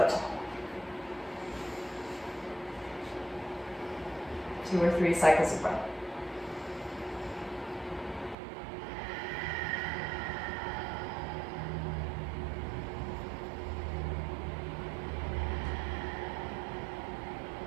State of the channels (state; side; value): drops out; left; at 8.3 s